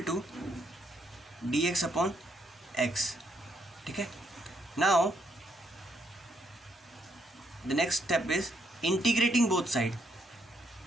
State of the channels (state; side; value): normal; both; correlation 0.74